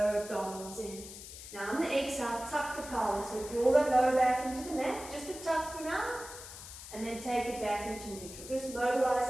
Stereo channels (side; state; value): left; noise; hiss, 13 dB below the sound